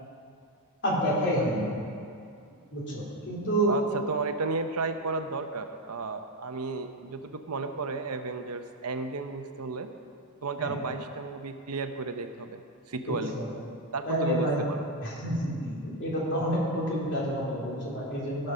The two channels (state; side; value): normal; both; correlation 0.09